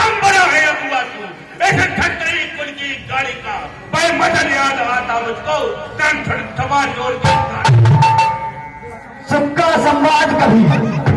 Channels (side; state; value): both; identical; correlation 1.00